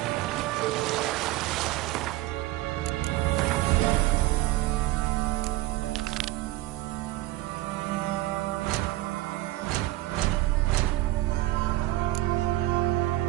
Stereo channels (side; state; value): left; quieter; 16.9 dB